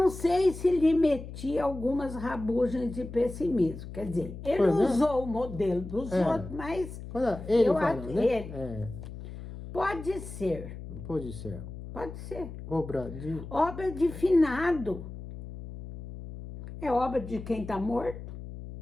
sei se lhe metia algumas rabugens de pessimismo. Quer dizer, ele usou o modelo dos outros, mas Ele eu fala, acho né? ele. Pode ser. Pode ser. Pode ser. Obra de... Obra de finado. É obra de quem está morto.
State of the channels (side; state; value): left; noise; hum, 11 dB below the sound